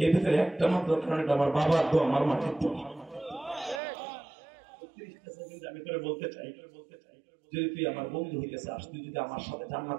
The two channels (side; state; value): left; drops out; at 3.8 s